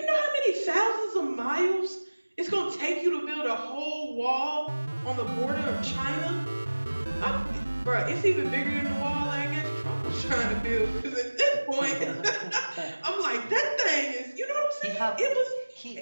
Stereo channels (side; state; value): both; inverted; correlation -1.00